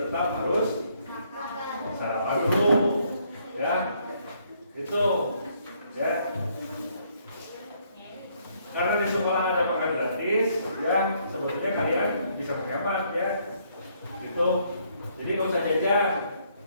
tetap harus sarapan dulu, ya. Itu, ya. Karena di sekolah ada makan gratis, ya sebetulnya kalian bisa menghemat, ya. Gitu. Jadi nggak usah jajan,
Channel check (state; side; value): inverted; both; correlation -0.69